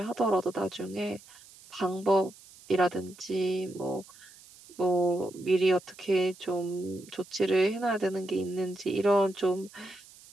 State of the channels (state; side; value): noise; right; hiss, 22 dB below the sound